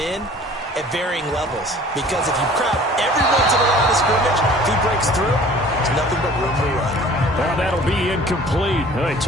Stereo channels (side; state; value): both; normal; correlation 0.49